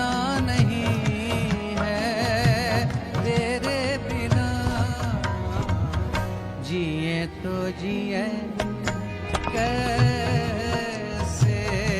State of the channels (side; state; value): both; identical; correlation 1.00